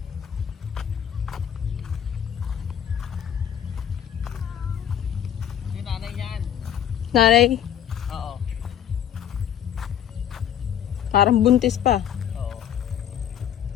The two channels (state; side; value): quieter; right; 9.6 dB